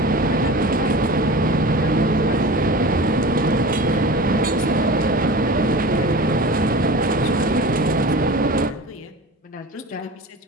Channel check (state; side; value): normal; both; correlation 0.35